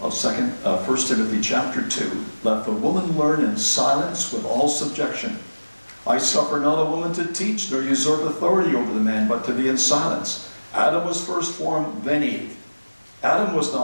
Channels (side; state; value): both; inverted; correlation -1.00